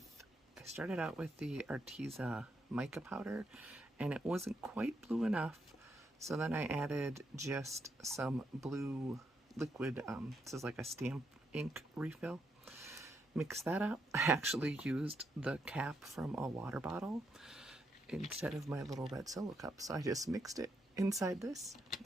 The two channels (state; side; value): normal; both; correlation 0.79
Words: started out with the Arteza mica powder, and it wasn't quite blue enough, so then I added just some blue liquid, this is like a stamp ink refill. Mix that up. I actually used the cap from a water bottle instead of my little red solo cup, so I just mixed it inside this